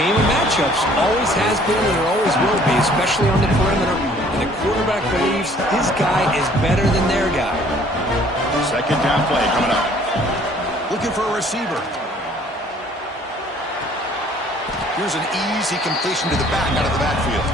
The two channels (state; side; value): normal; both; correlation 0.57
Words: of matchups. Always has been and there always will be, especially on the perimeter. And the quarterback believes his guy is better than their guy. Second down play coming up. Looking for a receiver. Here's an easy completion to the back out of the backfield.